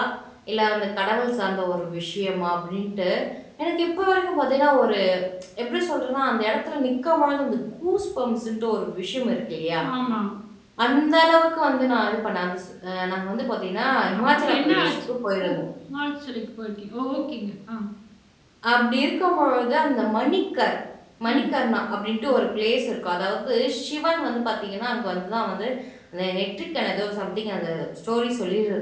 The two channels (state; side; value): identical; both; correlation 1.00